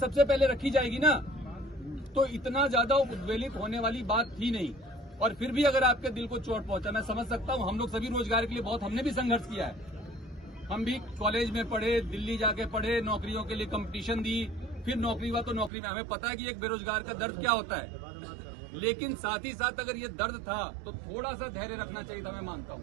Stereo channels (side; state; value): left; drops out; at 15.7 s